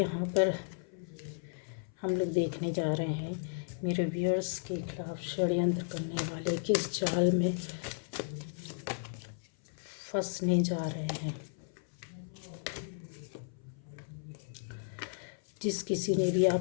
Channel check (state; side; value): silent; right; 55 dB below the other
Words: पर हम लोग देखने जा रहे हैं। मेरे व्यूअर्स के खिलाफ षड्यंत्र करने वाले किस जाल में फंसने जा रहे हैं। जिस किसी ने भी